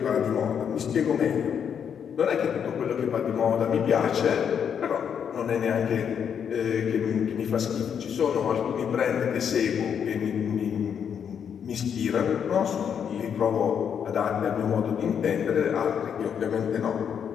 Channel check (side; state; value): right; quieter; 7.8 dB